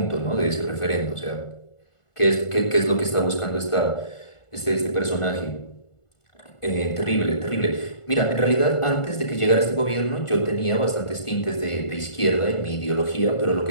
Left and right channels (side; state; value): right; late; 1.5 ms